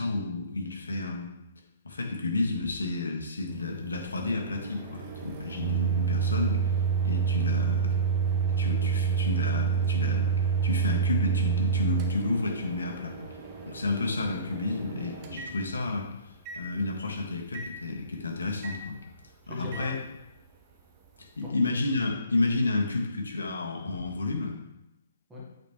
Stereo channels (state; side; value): inverted; both; correlation -0.36